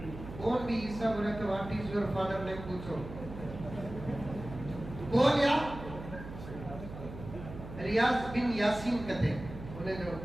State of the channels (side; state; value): right; noise; hum, 11 dB below the sound